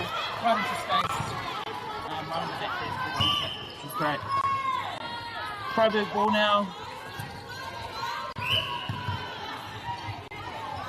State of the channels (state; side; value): identical; both; correlation 1.00